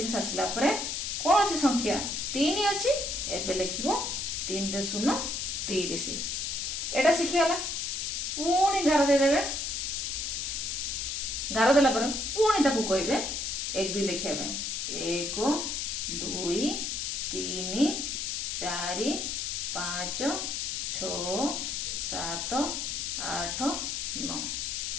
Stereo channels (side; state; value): left; noise; hiss, 2 dB below the sound